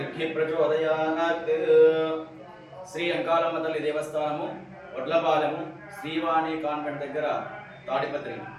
प्रचोदयात्। శ్రీ అంకాలమ్మ తల్లి దేవస్థానము వడ్లపాలెము శ్రీవాణి కాన్వెంట్ దగ్గర తాడిపత్రి.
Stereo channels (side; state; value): both; identical; correlation 1.00